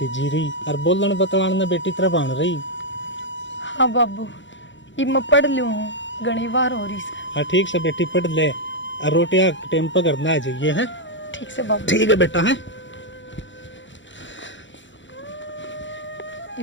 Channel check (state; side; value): late; right; 0.54 ms